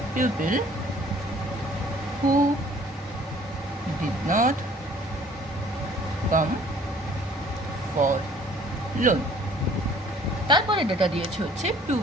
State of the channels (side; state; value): both; normal; correlation 0.54